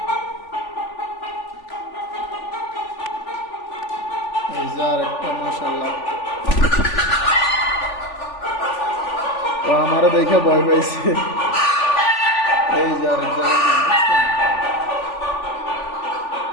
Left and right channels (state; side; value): late; right; 3.4 ms